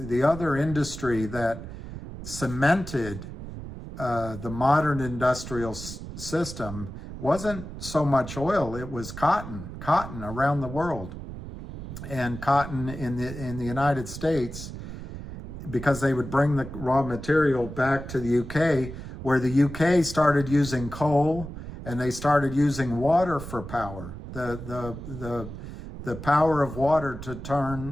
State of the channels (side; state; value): right; noise; rumble, 10 dB below the sound